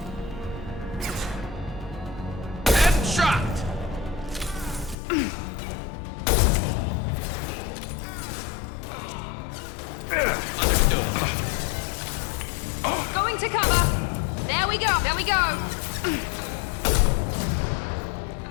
Headshot. Understood. Going to cover. There we go. There we go.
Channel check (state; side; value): drops out; right; at 5.0 s